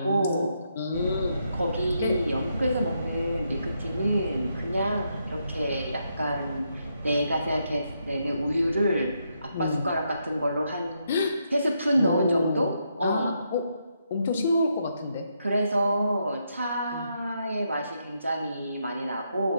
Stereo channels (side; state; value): both; inverted; correlation -0.79